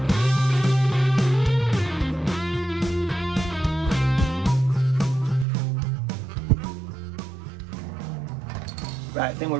Right, I think we're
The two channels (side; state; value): left; drops out; at 5.5 s